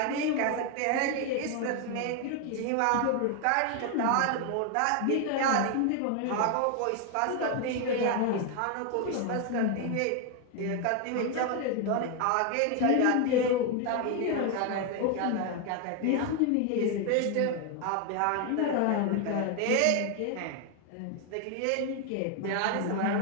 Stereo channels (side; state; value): both; different; correlation 0.01